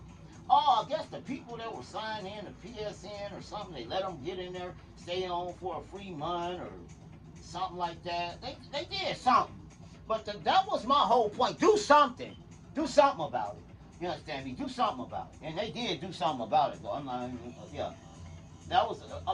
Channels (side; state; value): both; identical; correlation 1.00